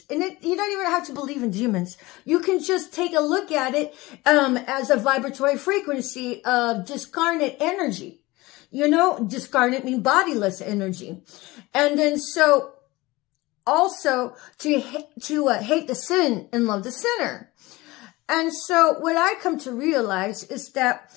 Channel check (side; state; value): right; quieter; 20.8 dB